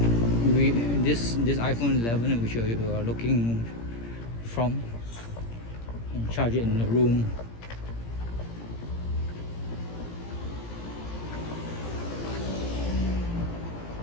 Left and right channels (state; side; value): late; right; 17 ms